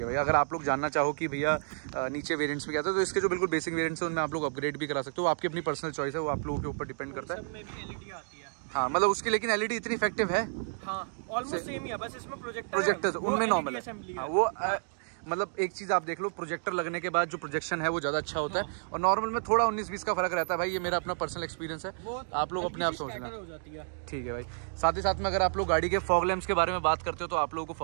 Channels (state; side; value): silent; left; digital silence